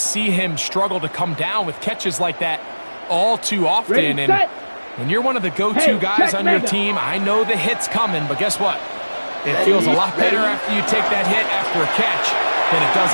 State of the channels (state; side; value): inverted; both; correlation -1.00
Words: him struggle to come down with catches like that all too often. And when you're one of the go-to guys on your team, I know the hit's coming, but guess what? It feels a lot better after you take that hit after a catch than it does